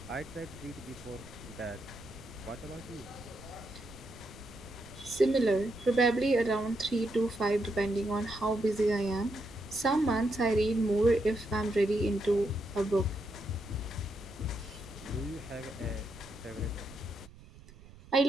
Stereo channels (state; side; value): noise; right; rumble, 20 dB below the sound